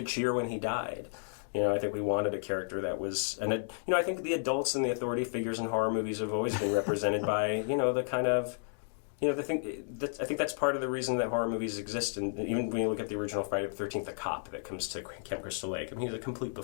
cheer when he died. I think we wanted a character that was... And, I think the adults and the authority figures in horror movies have always been represented by, the kind of... I think that's part of the reason that horror movies exist. And even when you look at the original Friday the 13th, the cop that comes to Camp Crystal Lake, he's a complete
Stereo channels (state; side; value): silent; right; digital silence